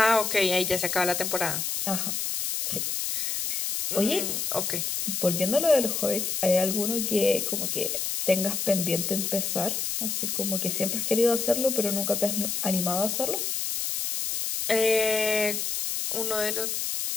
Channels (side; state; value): left; noise; hiss, 1 dB below the sound